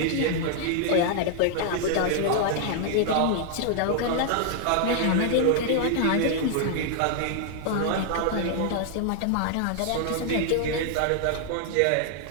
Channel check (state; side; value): different; both; correlation 0.00